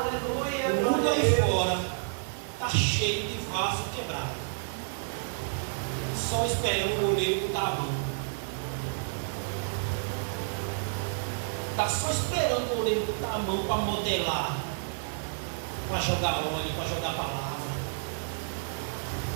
O mundo glória a aí Deus. fora está cheio de vaso quebrado. Só esperando o oleiro botar a mão. Está só esperando o oleiro botar a mão para modelar, para jogar óleo, para jogar palavra,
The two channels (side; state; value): left; silent; digital silence